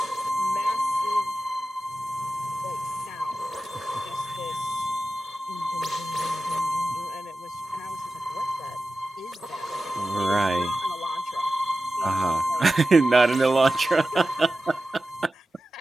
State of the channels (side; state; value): both; normal; correlation 0.94